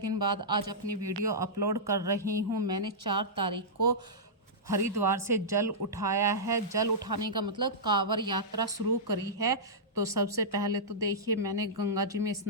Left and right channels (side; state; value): both; normal; correlation -0.14